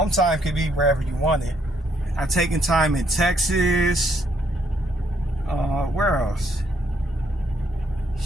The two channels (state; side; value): normal; both; correlation 0.71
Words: time could be wherever you want it. I've taken time in Texas, Where else?